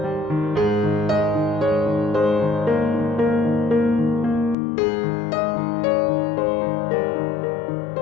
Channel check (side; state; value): right; drops out; at 4.5 s